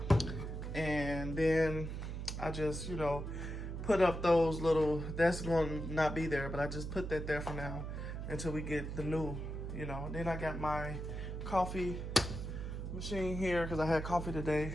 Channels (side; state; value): right; noise; hum, 5 dB below the sound